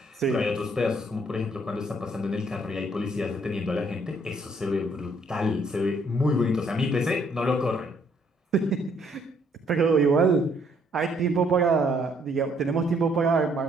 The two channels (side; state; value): both; normal; correlation 0.67